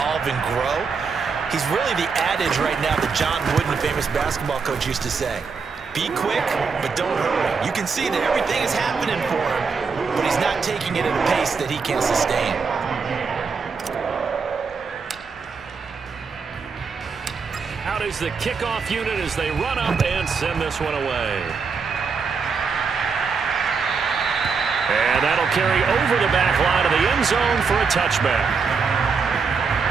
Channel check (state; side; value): quieter; left; 5.3 dB